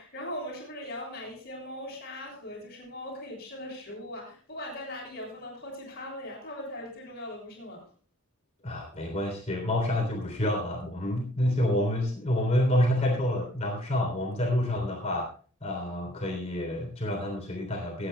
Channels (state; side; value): normal; both; correlation 0.56